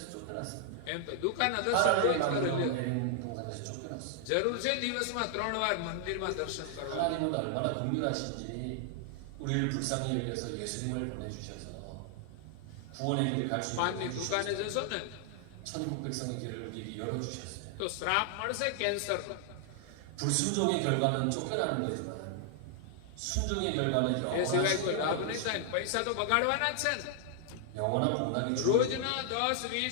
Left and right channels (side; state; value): both; different; correlation 0.00